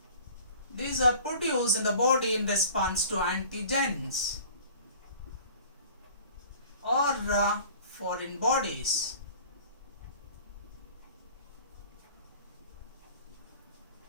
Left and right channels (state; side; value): inverted; both; correlation -0.46